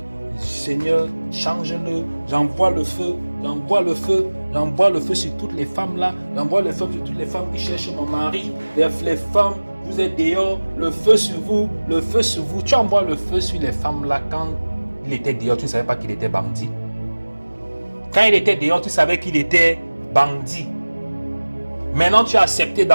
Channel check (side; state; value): both; inverted; correlation -1.00